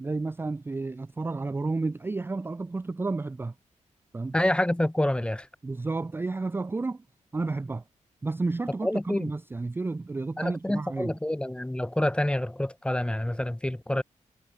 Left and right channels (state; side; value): normal; both; correlation 0.96